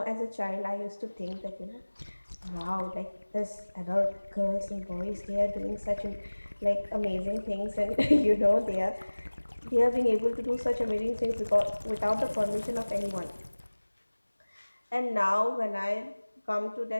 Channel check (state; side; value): inverted; both; correlation -1.00